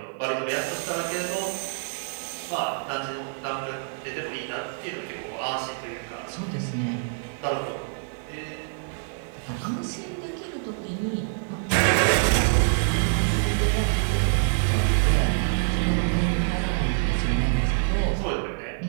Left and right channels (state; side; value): silent; left; digital silence